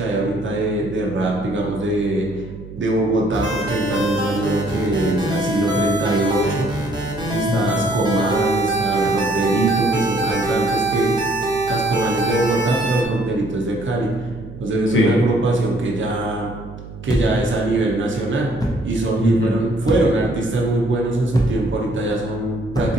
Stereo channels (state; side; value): noise; right; hum, 14 dB below the sound